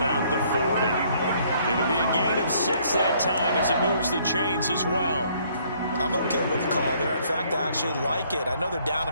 the 40. It'll be a gain of 6 that time as it moves the chains as well. I'm okay with the call there. In fact, I actually like it. I know they're down a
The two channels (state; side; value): inverted; both; correlation -0.64